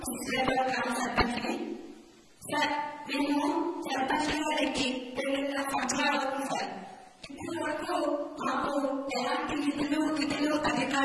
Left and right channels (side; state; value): both; identical; correlation 1.00